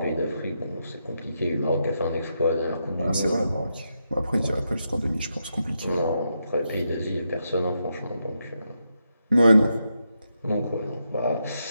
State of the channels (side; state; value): both; inverted; correlation -0.83